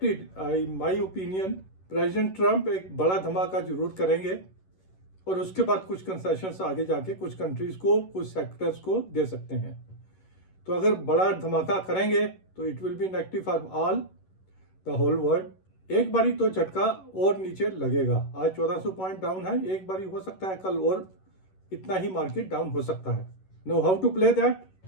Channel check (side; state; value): right; late; 11 ms